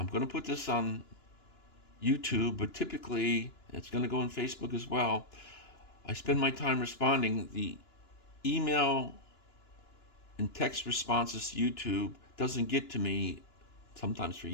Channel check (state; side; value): late; right; 2.9 ms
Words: going to put this on YouTube, but typically it's going to go on Facebook as well. I spend my time responding. The email and text responses to YouTube doesn't get to me sometimes for